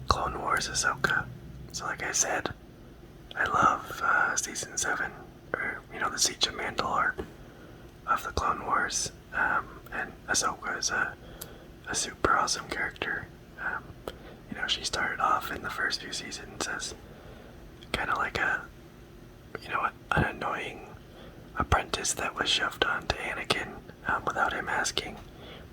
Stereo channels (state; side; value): identical; both; correlation 1.00